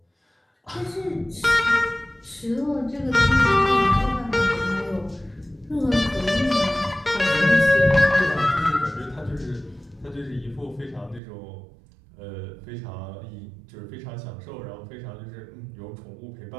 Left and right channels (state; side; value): drops out; left; at 11.2 s